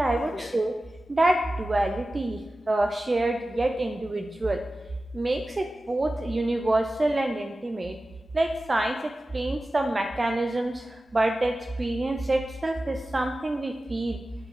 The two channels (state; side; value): normal; both; correlation 0.95